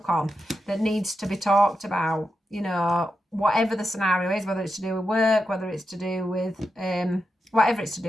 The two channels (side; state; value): both; normal; correlation 0.88